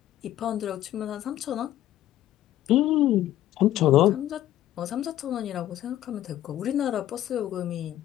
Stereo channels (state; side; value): quieter; right; 13.2 dB